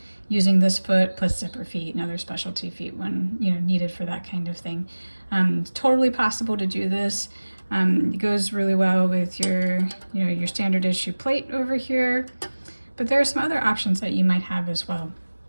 using this foot plus zipper feet and other specialty feet when needed for that kind of thing. Totally possible to do this. It goes really well with your your standard issue plate over here, but there are some other options that you might have as well.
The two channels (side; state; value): both; inverted; correlation -1.00